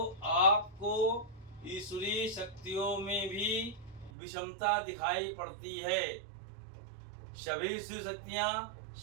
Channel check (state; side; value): drops out; left; at 4.1 s